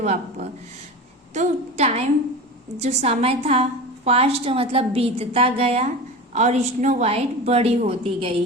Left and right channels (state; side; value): normal; both; correlation 0.29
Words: तो टाइम जो समय था, पास्ट मतलब बीतता गया और स्नो वाइट बड़ी होती गई।